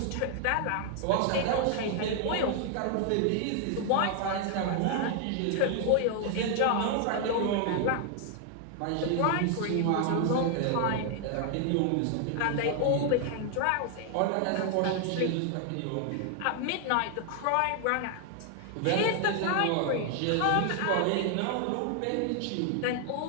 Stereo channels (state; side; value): different; both; correlation 0.00